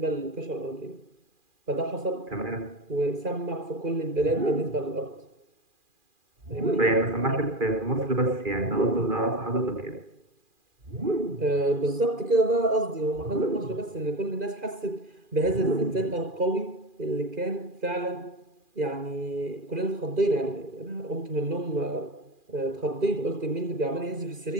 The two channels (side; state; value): left; late; 2.4 ms